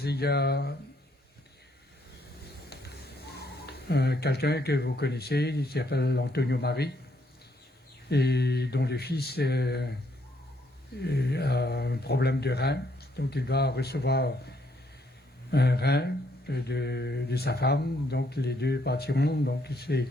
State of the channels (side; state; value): both; normal; correlation 0.71